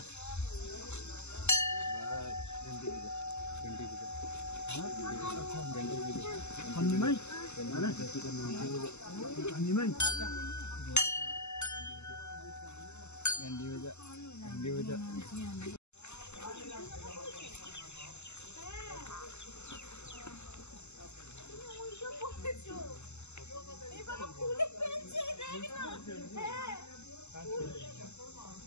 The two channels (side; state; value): right; late; 0.82 ms